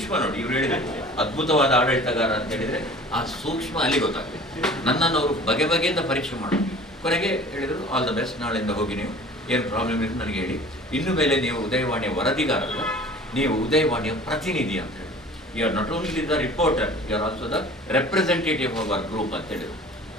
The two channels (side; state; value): both; normal; correlation 0.45